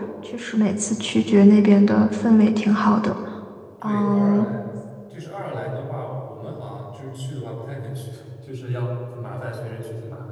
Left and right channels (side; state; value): both; identical; correlation 1.00